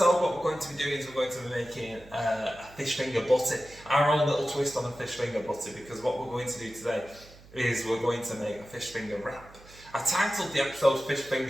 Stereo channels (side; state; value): right; noise; hum, 22 dB below the sound